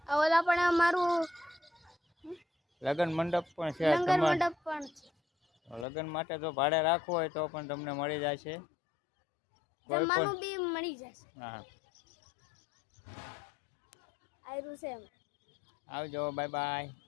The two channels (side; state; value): right; drops out; at 5.9 s